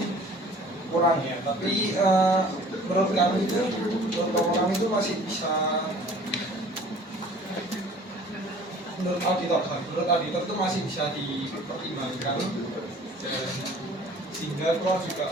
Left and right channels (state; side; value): normal; both; correlation 0.49